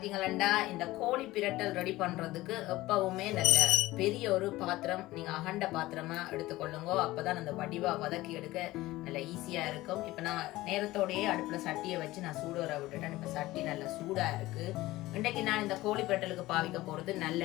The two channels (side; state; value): right; quieter; 18.0 dB